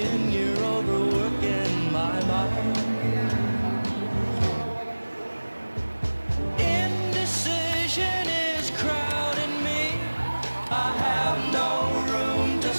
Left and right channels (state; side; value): inverted; both; correlation -1.00